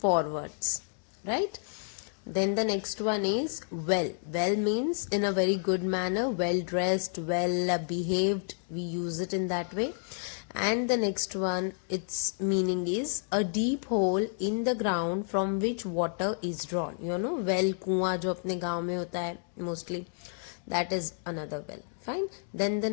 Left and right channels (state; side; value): silent; right; 57 dB below the other